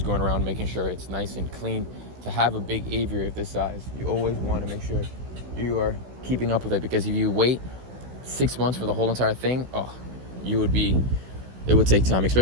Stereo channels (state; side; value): late; left; 16 ms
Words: around making sure it's nice and clean. To have a big aviary of this size, you always want to make sure you are keeping up with it, because if you wait 6 months for the whole entire thing, it would take time,